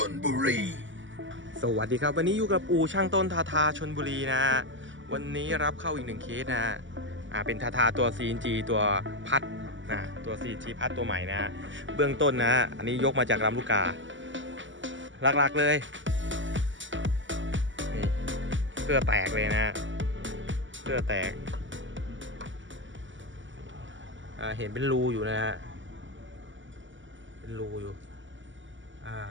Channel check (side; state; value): left; late; 0.55 ms